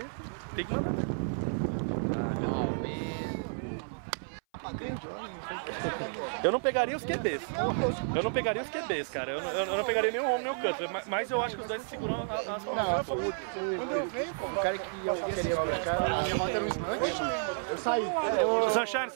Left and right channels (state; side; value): silent; left; 57 dB below the other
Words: que mandar. Eu não pegaria os QBs. Cara. Eu não pegaria nem o home nem o Cutler. Mas eu acho que os dois seguram as Não, o cara que eu queria buscar, a minha rota era um snatch, eu saí.